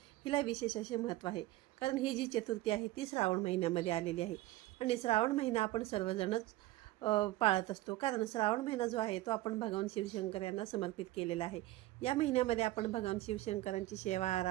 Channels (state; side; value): quieter; left; 17.1 dB